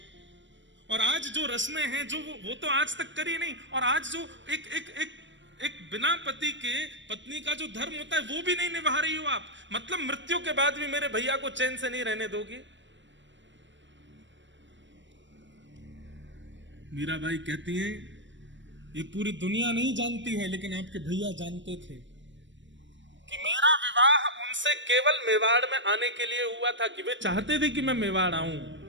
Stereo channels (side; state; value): left; late; 0.54 ms